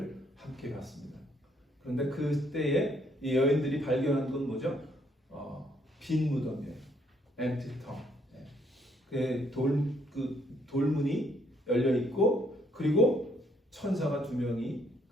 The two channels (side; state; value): both; normal; correlation 0.69